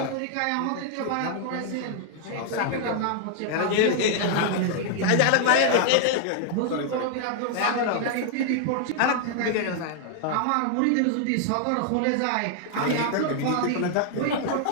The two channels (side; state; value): both; different; correlation 0.00